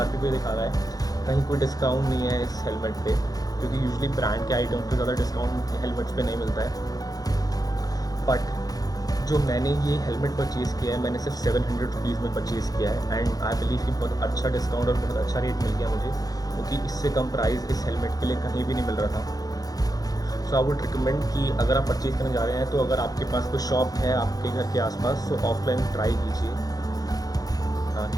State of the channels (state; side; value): late; right; 0.18 ms